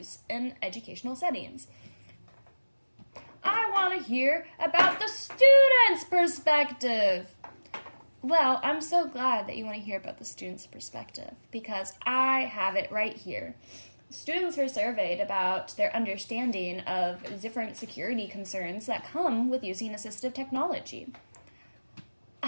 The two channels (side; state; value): both; inverted; correlation -1.00